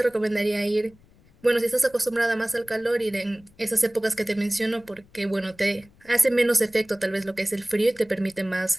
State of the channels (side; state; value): left; noise; rumble, 29 dB below the sound